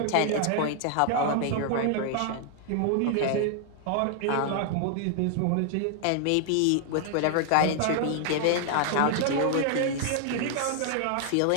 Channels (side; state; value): both; different; correlation 0.00